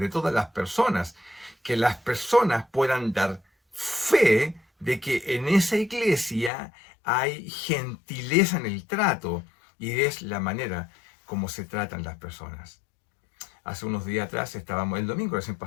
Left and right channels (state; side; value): drops out; right; at 6.5 s